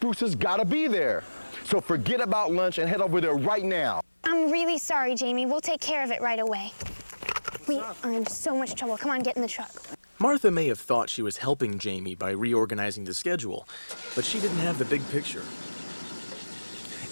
has got to be there. So forget about lunch and head over there right now. I'm really sorry, Jamie. We'll take care of it right away. We are in so much trouble. Come on, get in the truck. Martha may have thought she was helping Jamie by reorganizing the schedule, but she didn't have the big picture.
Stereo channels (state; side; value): inverted; both; correlation -1.00